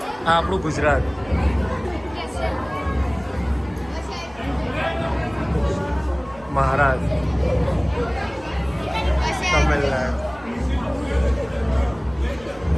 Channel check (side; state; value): right; noise; hum, 22 dB below the sound